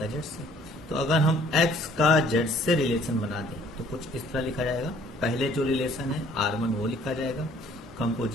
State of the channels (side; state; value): both; normal; correlation 0.57